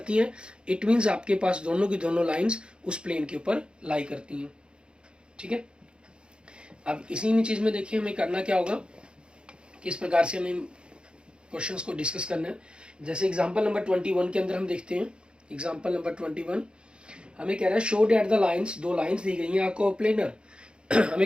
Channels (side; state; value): left; late; 0.053 ms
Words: हैं इट मीन्स आपके पास दोनों की दोनों लाइंस उस प्लेन के ऊपर लाई करती हैं ठीक है अब इसी में चीज़ में देखिए हमें करना क्या होगा किस प्रकार से हमें क्वेश्चंस को डिस्कस करना है जैसे एग्जांपल नंबर 21 के अंदर हम देखते हैं एग्जांपल नंबर 21 हमें कह रहा है शो डेट द लाइंस दो लाइंस दी गई हैं आपको कोप्लेनर